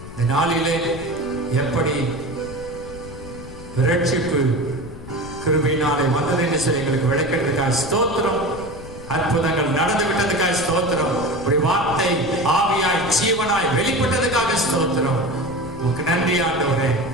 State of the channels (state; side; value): noise; left; rumble, 14 dB below the sound